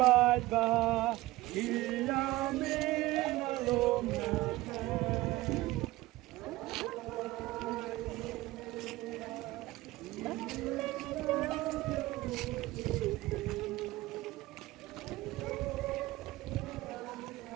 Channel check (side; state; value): left; quieter; 18.5 dB